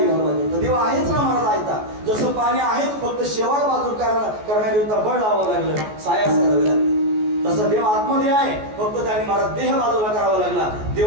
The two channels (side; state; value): left; late; 14 ms